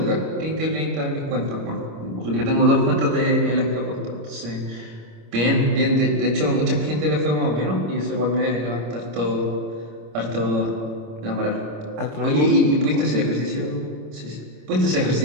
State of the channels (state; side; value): late; left; 27 ms